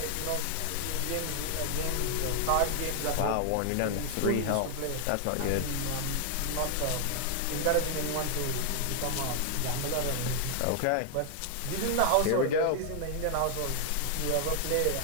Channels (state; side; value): different; both; correlation 0.00